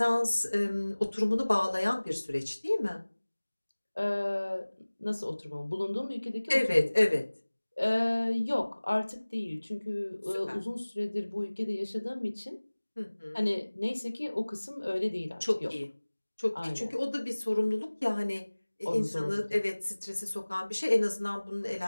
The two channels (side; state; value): both; inverted; correlation -1.00